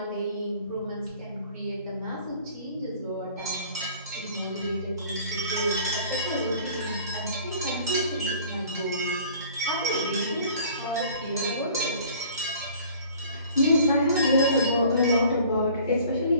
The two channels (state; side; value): inverted; both; correlation -0.50